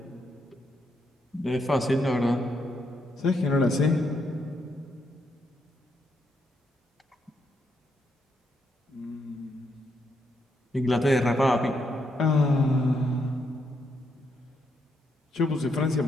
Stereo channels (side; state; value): both; normal; correlation 0.78